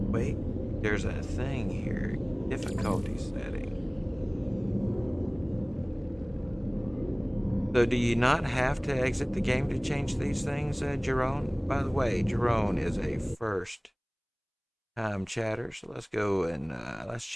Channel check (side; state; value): both; identical; correlation 1.00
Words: wait, there's a thing here. Difficulty setting. So do you not have to exit the game to change these things, Jerome? By the way, Jerome is a first time chatter, so let's go and let's